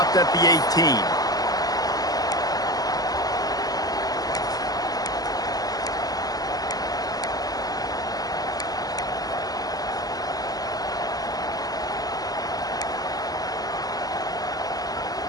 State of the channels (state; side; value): late; right; 0.18 ms